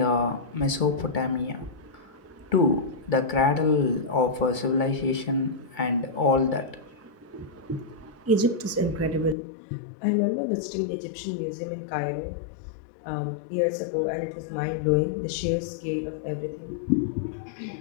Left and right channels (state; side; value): drops out; right; at 9.3 s